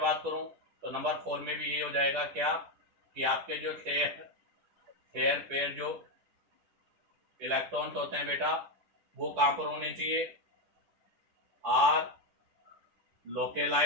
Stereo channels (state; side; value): late; left; 10 ms